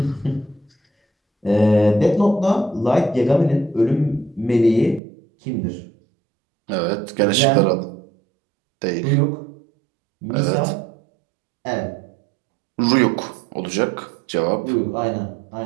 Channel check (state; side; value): drops out; left; at 5.0 s